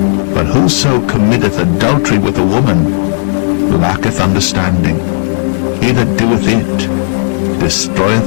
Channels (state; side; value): silent; right; digital silence